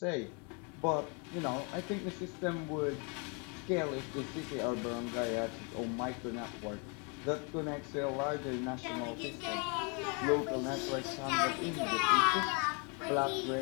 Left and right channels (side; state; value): right; quieter; 34.5 dB